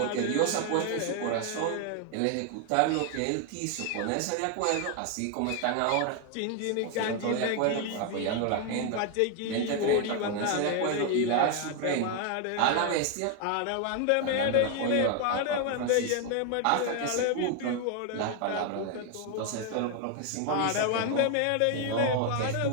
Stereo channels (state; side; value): different; both; correlation 0.00